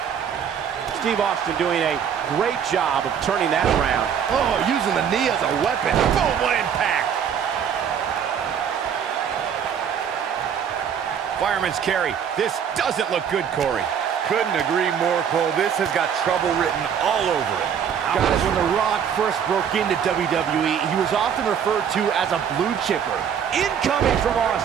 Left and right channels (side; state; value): left; quieter; 8.0 dB